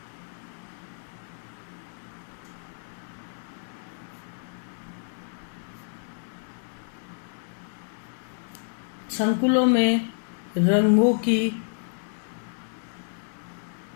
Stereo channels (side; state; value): right; silent; 59 dB below the other